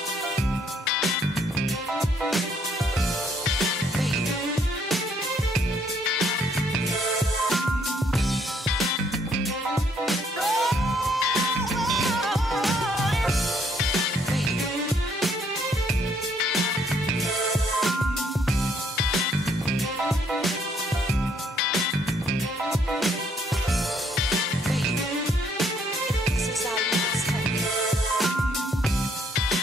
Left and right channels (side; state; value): both; normal; correlation 0.68